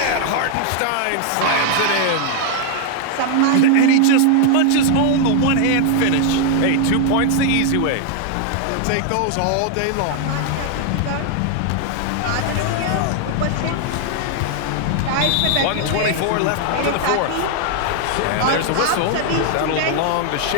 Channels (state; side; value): different; both; correlation 0.00